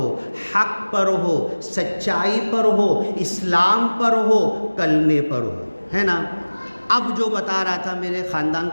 हक पर हो, सच्चाई पर हो, इस्लाम पर हो, कलमे पर हो, है ना। अब जो बता रहा था, मेरे ख़ानदान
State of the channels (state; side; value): inverted; both; correlation -1.00